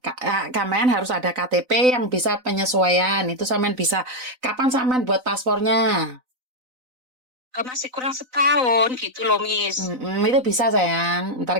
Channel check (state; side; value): late; left; 4.0 ms